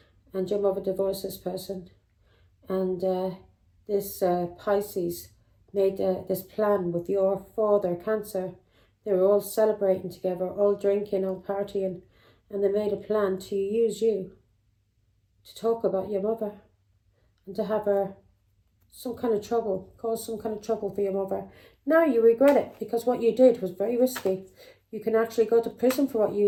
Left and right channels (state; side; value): identical; both; correlation 1.00